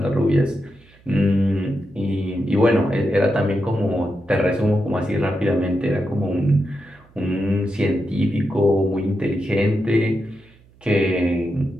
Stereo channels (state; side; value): noise; right; hum, 28 dB below the sound